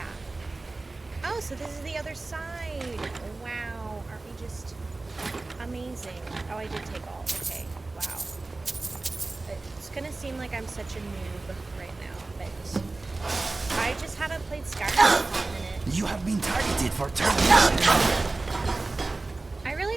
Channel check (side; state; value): left; quieter; 3.3 dB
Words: Oh, so this is the other side. Wow, aren't we just amazing? Oh, I did take all. Okay, wow. It's gonna seem like I'm such a noob right now, but I just haven't played Skyrim in a hot minute. You have been targeted for termination. I really